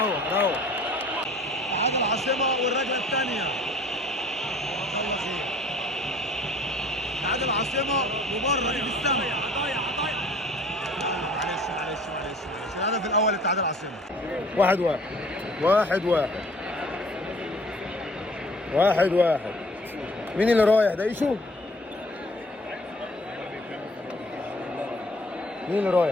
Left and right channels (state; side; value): normal; both; correlation 0.52